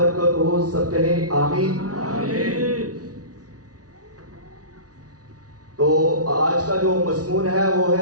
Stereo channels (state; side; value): late; left; 0.68 ms